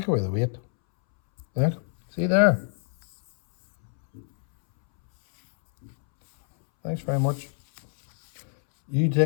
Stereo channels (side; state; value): right; silent; 62 dB below the other